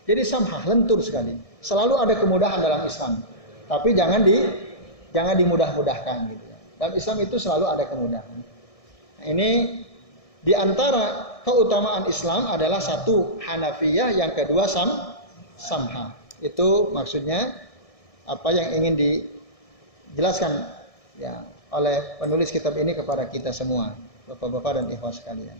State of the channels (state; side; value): late; right; 1.6 ms